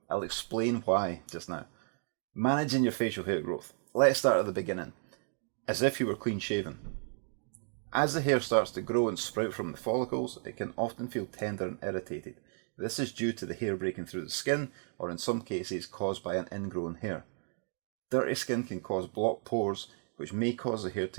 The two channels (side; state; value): left; silent; 56 dB below the other